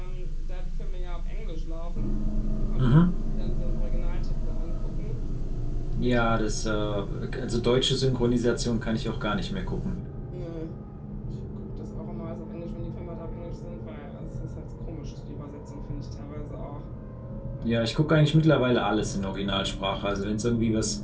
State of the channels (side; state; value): both; identical; correlation 1.00